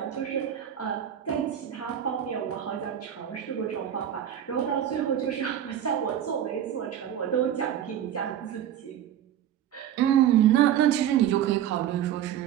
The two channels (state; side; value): quieter; left; 10.4 dB